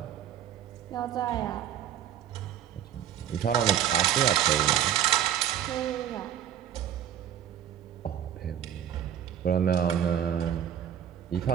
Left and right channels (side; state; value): left; quieter; 10.0 dB